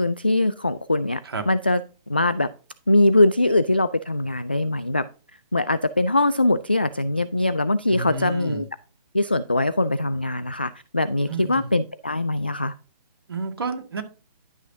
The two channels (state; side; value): inverted; both; correlation -0.85